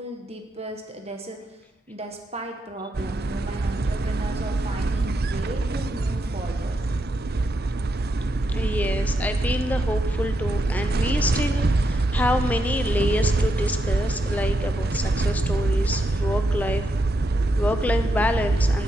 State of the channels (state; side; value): normal; both; correlation 0.82